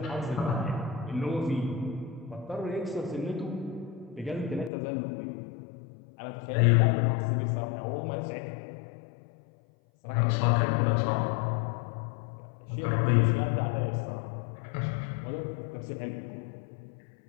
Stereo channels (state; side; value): drops out; right; at 4.7 s